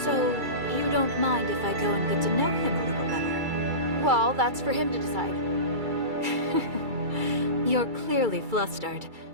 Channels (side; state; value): left; late; 2.3 ms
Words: So, you don't mind if I go and get to know him a little better? Well, that's for him to decide. You're clearly flustered.